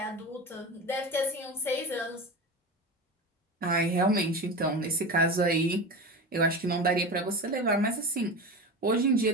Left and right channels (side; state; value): both; normal; correlation 0.26